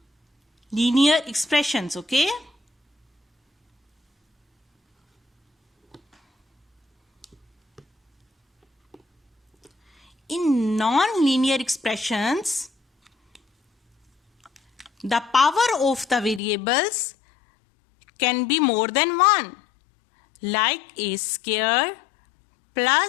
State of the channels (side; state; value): right; drops out; at 16.4 s